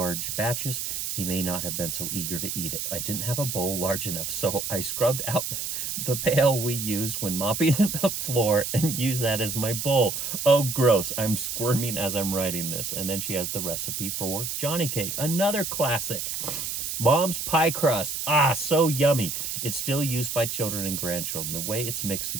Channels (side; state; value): right; noise; hiss, 3 dB below the sound